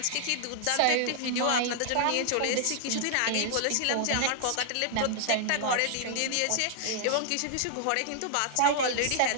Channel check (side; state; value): both; different; correlation 0.00